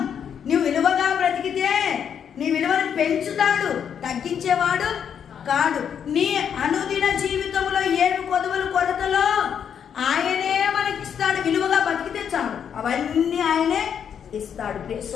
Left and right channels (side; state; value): right; quieter; 8.0 dB